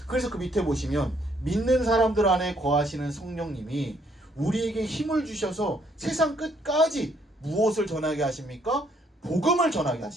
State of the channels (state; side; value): normal; both; correlation 0.68